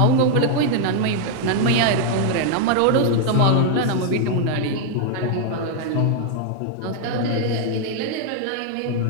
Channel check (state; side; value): different; both; correlation 0.00